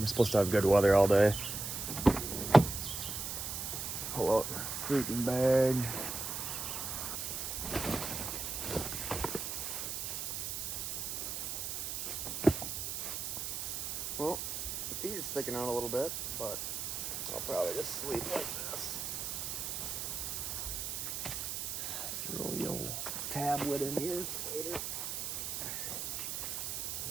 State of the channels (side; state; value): right; noise; hiss, 3 dB below the sound